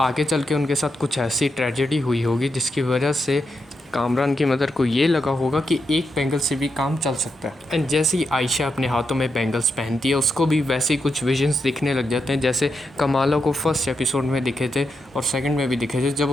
आगे चल के उनके साथ कुछ ऐसी ट्रेजेडी हुई होगी जिसकी वजह से कामरान की मदर को ये लगा होगा कि एक बैंगल से भी काम चल सकता है। एंड जैसे ही आयशा अपने हाथों में बैंगल्स पहनती है, उसको भी वैसे ही कुछ विजन्स दिखने लग जाते हैं जैसे कमाला को फर्स्ट एपिसोड में दिखे थे और सेकंड में भी दिखे थे जब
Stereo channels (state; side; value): normal; both; correlation 0.84